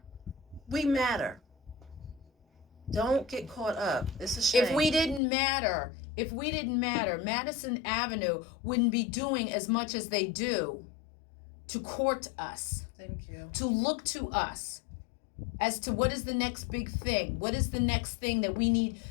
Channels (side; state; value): right; drops out; at 5.2 s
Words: We matter. Don't get caught up. It's a shame. If we didn't matter, Madison Avenue wouldn't be doing as much as they do to court us, Thank you. to look to us as to what is the next big thing, what is the next thing that we need